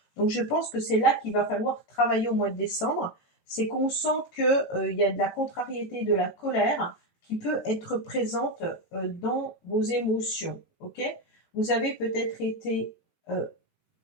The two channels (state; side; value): late; right; 18 ms